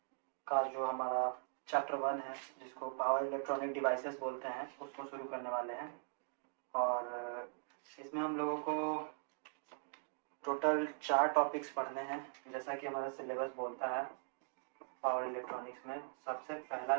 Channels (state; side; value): silent; left; digital silence